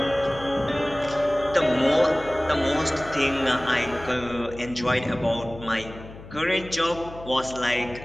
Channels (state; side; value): noise; left; hum, 16 dB below the sound